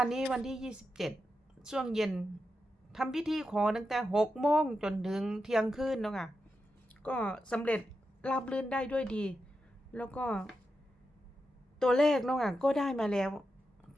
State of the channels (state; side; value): normal; both; correlation 0.88